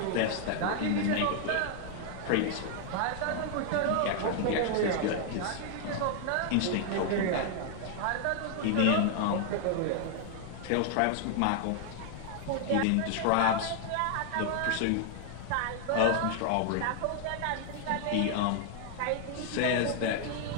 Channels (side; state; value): both; different; correlation 0.00